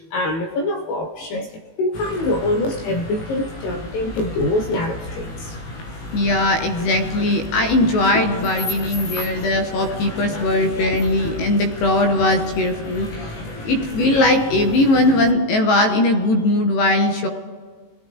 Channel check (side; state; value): right; late; 18 ms